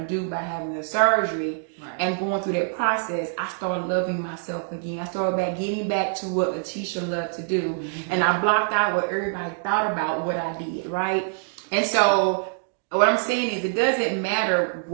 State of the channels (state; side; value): silent; left; digital silence